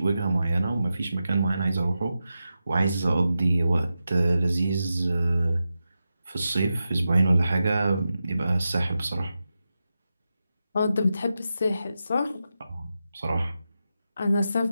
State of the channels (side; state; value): both; inverted; correlation -0.90